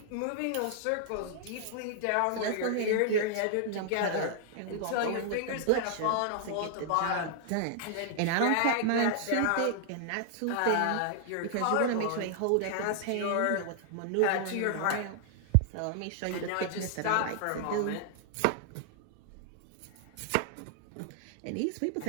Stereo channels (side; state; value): both; different; correlation -0.01